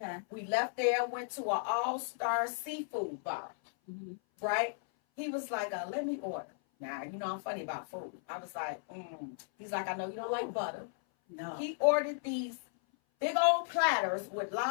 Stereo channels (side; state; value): right; silent; 54 dB below the other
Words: We left there. Went to an all-star seafood bar. Mm-hmm. Right? He was like, let me order. Now, I'm funny about food. I was like, He's like, I know you don't like butter. No. He ordered these big old platters with